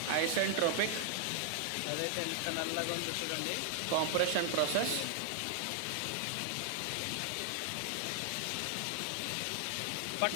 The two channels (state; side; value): different; both; correlation 0.00